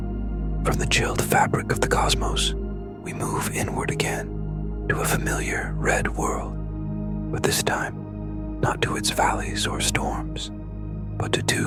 From the chilled fabric of the cosmos, we move inward again to a familiar red world, but this time not to its valleys or storms, but to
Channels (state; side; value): identical; both; correlation 1.00